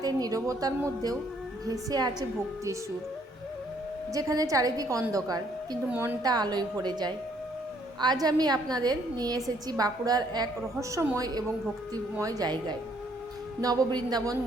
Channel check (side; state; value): both; normal; correlation 0.66